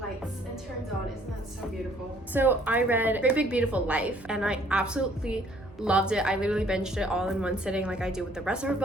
and turns on. Isn't that so beautiful? So I read Great Big Beautiful Life and I absolutely loved it. I literally binged it all in one sitting like I do with the rest of her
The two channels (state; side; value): normal; both; correlation 0.61